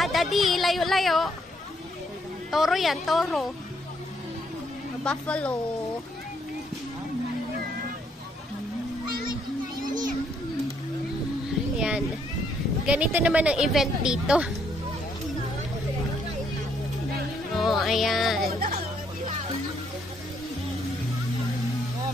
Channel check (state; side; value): normal; both; correlation 0.71